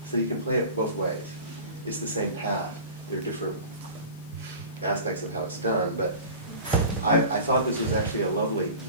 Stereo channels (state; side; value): inverted; both; correlation -0.37